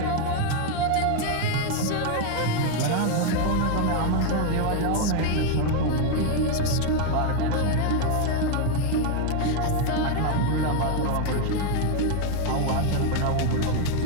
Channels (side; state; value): both; different; correlation 0.00